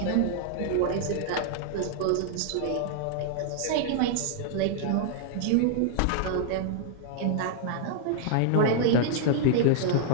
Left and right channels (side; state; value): both; different; correlation -0.01